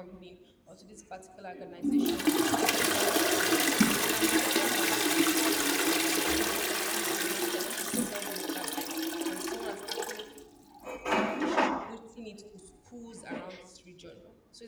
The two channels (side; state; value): both; identical; correlation 1.00